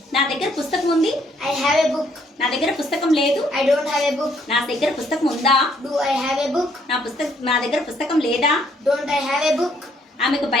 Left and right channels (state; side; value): normal; both; correlation 0.68